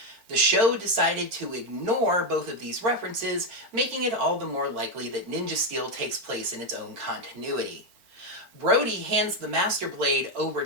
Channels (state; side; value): late; left; 4.4 ms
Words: The show decided to ignore both of these references, making it all the more likely that Ninja Steel takes place in its own continuity. Brody hands the Master Blade over